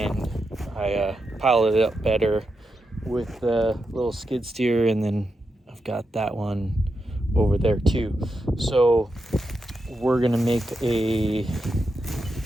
I piled it up better with the little skid steer, and then I've got that one over there too. So we're gonna make a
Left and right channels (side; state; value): both; normal; correlation 0.87